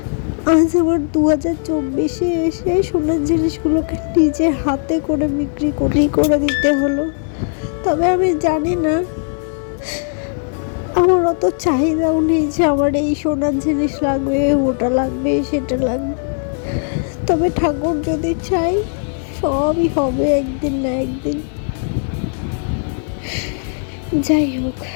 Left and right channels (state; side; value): silent; right; 61 dB below the other